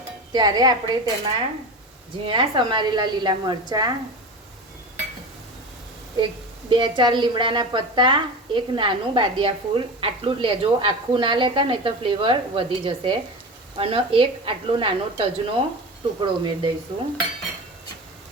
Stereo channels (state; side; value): normal; both; correlation 0.28